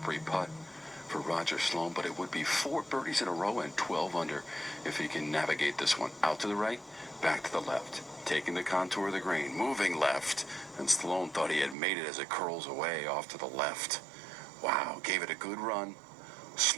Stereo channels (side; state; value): left; drops out; at 11.8 s